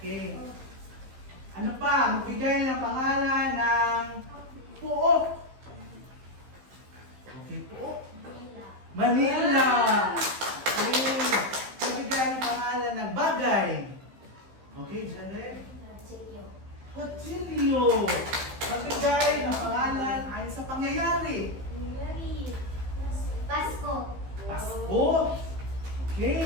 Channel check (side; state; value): left; late; 15 ms